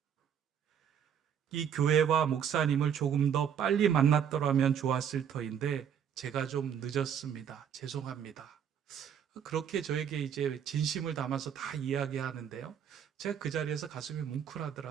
이 교회와 목사님을 조금 더 빨리 만났더라면 좋았을 터인데 제가 좀 늦었습니다. 죄송합니다. 그렇게 저에게 이제 진심을 담아서 다 이야기하는데요. 제가 그 자리에서 가슴이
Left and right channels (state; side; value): quieter; left; 8.4 dB